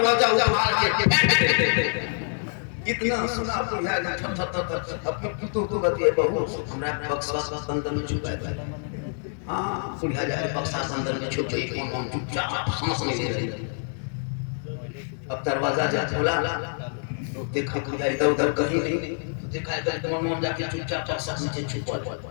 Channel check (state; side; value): silent; right; 61 dB below the other